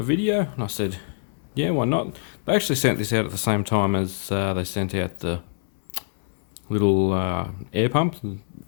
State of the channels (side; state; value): right; silent; 60 dB below the other